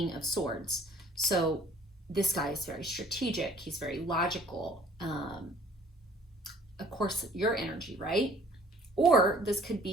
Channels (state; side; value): normal; both; correlation 0.54